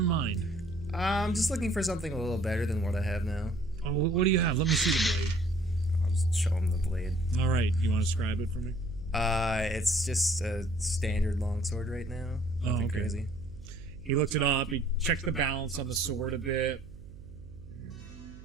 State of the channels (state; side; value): noise; right; hum, 17 dB below the sound